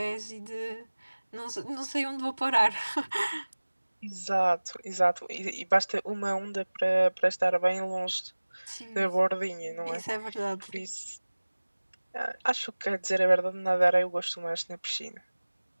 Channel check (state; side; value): inverted; both; correlation -1.00